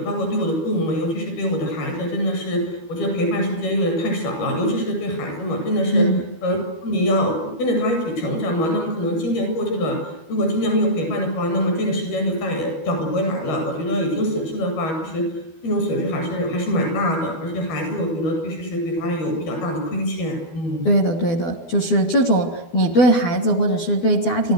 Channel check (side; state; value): right; late; 12 ms